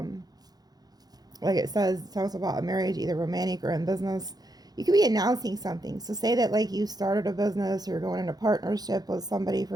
like it says, it talks about a marriage, either romantic or in business. You could be announcing something. So say that like you started a business or you're going into partnership with somebody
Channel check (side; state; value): left; late; 0.19 ms